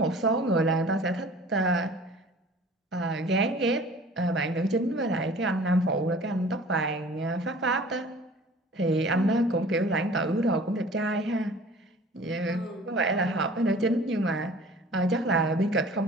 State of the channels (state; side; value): normal; both; correlation 0.47